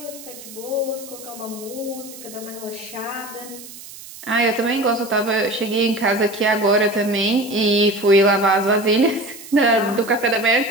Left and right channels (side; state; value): right; noise; hiss, 16 dB below the sound